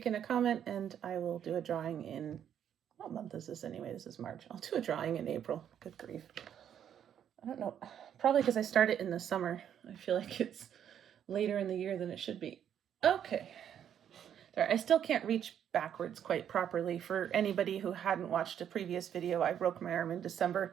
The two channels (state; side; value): quieter; left; 9.4 dB